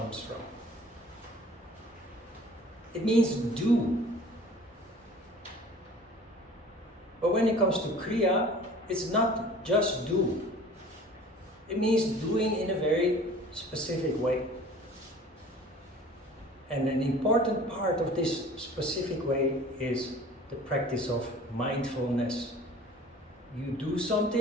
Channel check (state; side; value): normal; both; correlation 0.46